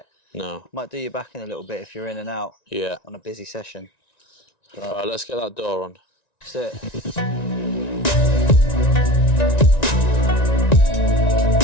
No. Might do your back in a little bit if you're in and out. Yeah. On a busy session. But, all right, let's get that door on. That's it.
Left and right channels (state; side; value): late; right; 1.9 ms